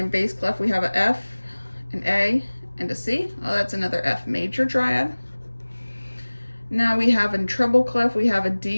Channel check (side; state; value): both; inverted; correlation -1.00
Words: bass clef, we have a F, an A, and a C. Oh, that's another F major triad. Now we have in treble clef, we have a